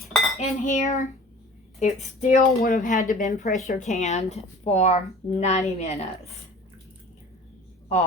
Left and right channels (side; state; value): both; normal; correlation 0.43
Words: in here, it still would have had to been pressure canned for 90 minutes.